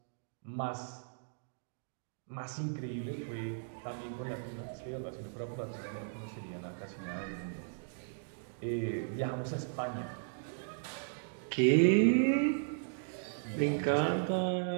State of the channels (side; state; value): left; silent; digital silence